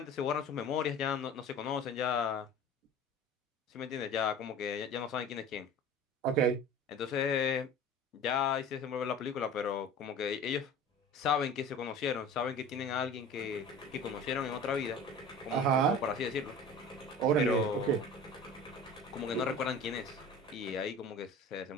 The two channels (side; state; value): both; normal; correlation 0.40